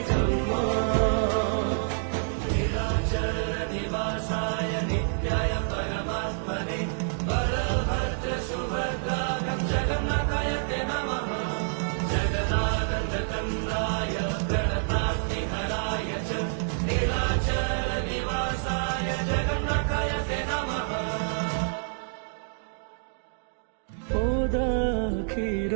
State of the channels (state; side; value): silent; left; digital silence